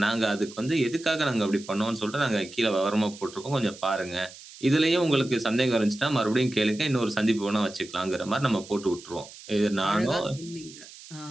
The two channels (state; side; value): noise; right; hiss, 18 dB below the sound